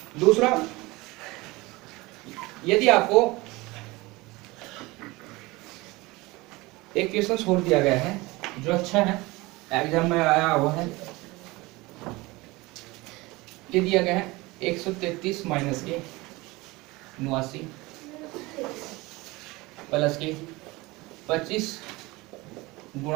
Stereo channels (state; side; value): quieter; left; 22.1 dB